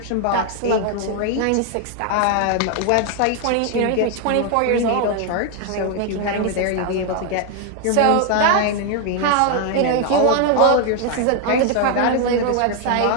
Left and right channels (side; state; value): both; different; correlation 0.00